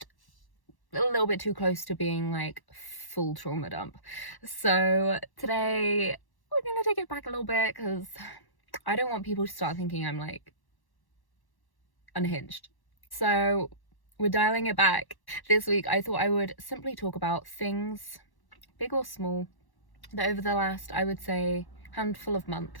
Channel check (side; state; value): right; late; 1.1 ms